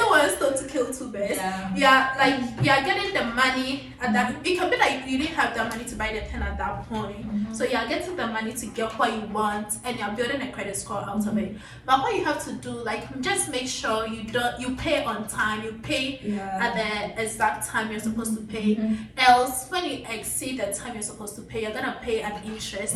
one stone to kill two birds. Like, you're getting the money at that. It can be like you didn't have the money to buy the pen at that point. So you're getting the money to get what you want, and you're building a credit score out of it. But what you have to do, like, just make sure you pay on time. You pay at the exact time you're supposed to pay. Else, when you exceed the time you're supposed to pay, you're gonna pay an interest,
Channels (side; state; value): both; identical; correlation 1.00